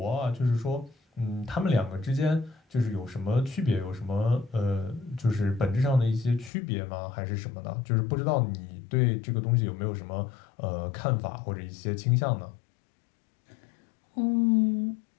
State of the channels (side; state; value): right; drops out; at 6.5 s